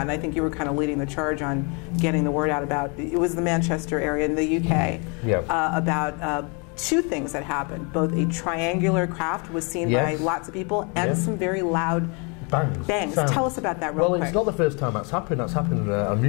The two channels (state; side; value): quieter; right; 33.2 dB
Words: and I think you were kind of leading the charge on getting the word out about, it was the Manchester area in the UK, about 2 things that happened. Both a triangular craft was seen by lots of people, and some very loud bangs. Tell us about that real quick. Well, it's not the first time that's happened. That's happened on